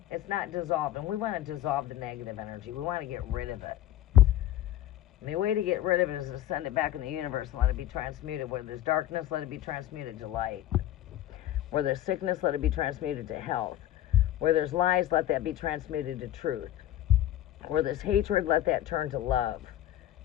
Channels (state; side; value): quieter; right; 12.8 dB